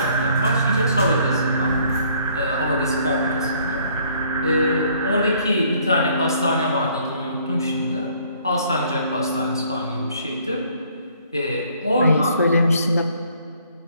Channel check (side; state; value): both; inverted; correlation -0.62